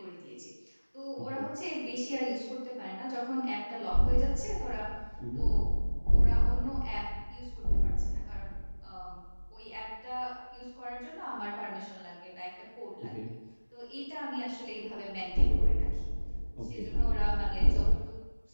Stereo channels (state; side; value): inverted; both; correlation -1.00